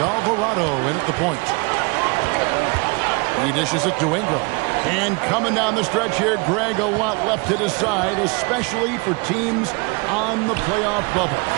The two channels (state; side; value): quieter; left; 29.8 dB